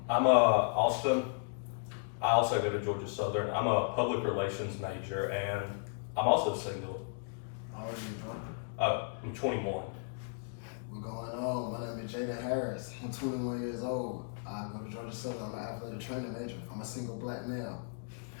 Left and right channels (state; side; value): silent; right; digital silence